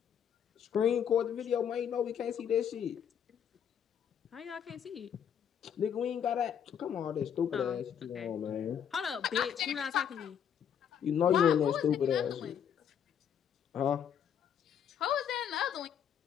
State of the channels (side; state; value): right; quieter; 8.5 dB